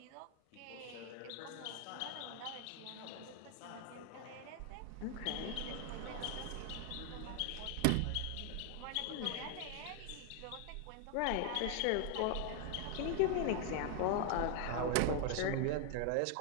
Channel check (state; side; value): different; both; correlation 0.00